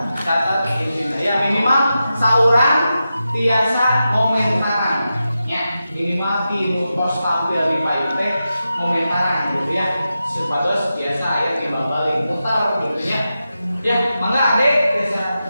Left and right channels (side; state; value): both; inverted; correlation -0.90